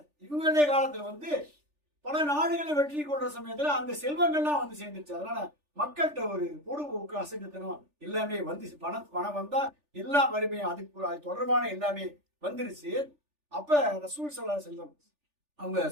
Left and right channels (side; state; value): left; late; 3.4 ms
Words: இவங்களுடைய காலத்துல வந்து பல நாடுகளை வெற்றி கொள்ற சமயத்துல அந்த செல்வங்கள்லாம் வந்து சேர்ந்துருச்சு. அதனால மக்கள்கிட்ட ஒரு பொடுபோக்கு அசைத்தனம் எல்லாமே வந்து பணம் வந்தா எல்லா வறுமையும் அது தொடர்பான எல்லாமே வந்துருச்சு. அப்ப ரசூல் ஸல்லல்லாஹு அலைஹி வஸல்லம் அவங்க